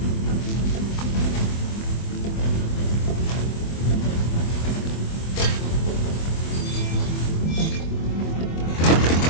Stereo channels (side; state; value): right; late; 24 ms